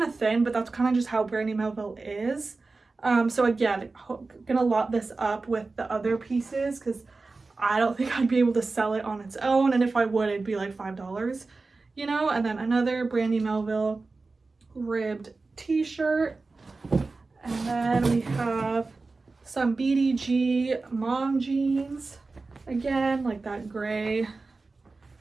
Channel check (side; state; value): left; quieter; 3.8 dB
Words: of thin, but that's kind of just how Brandy Melville is. So again, gonna lot this up with the other pieces, because I don't think I'd be able to sell it on its own, and if I would, it'd be like $5, you know. And then another Brandy Melville ribbed t-shirt. And then we have some BDG mom jeans. Again, like that gray,